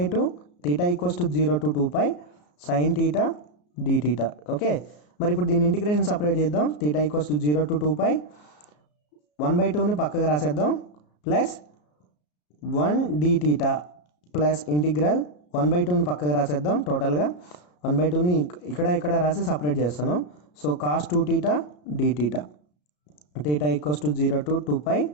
theta = 0 to 2π sine theta d theta. Okay, మరి ఇప్పుడు దీన్ని ఇంటిగ్రేషన్ సపరేట్ చేద్దాం. థీటా = 0 to 2π 1/2ని పక్కకు రాసేద్దాం plus 1 d theta plus integral 1/2ని పక్కకు రాసేద్దాం. టోటల్గా 1/2ని ఇక్కడ రాసి సపరేట్ చేస్తున్నాం. So cos 2θ d theta. Theta = 0 to 2π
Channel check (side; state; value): right; late; 34 ms